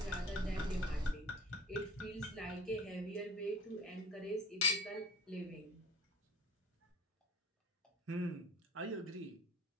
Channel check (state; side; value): normal; both; correlation 0.43